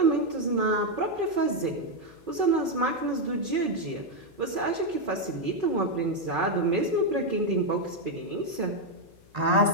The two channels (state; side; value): noise; left; hum, 28 dB below the sound